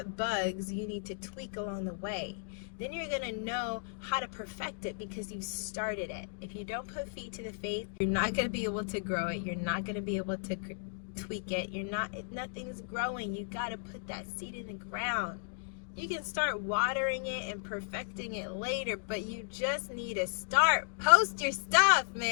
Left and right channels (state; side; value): silent; right; digital silence